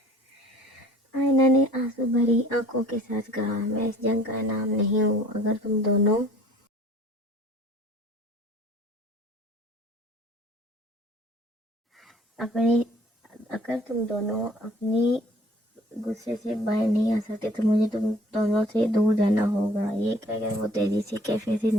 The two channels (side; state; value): both; normal; correlation 0.53